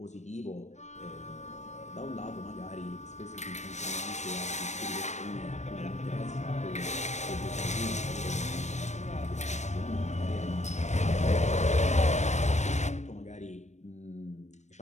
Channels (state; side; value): late; right; 0.34 ms